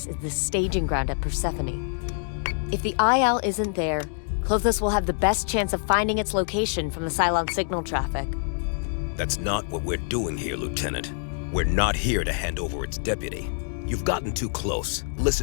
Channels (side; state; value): right; silent; digital silence